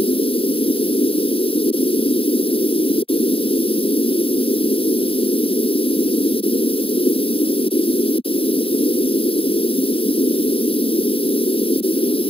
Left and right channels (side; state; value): right; late; 0.27 ms